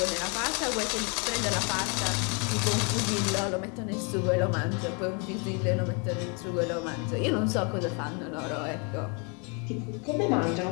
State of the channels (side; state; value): right; quieter; 34.4 dB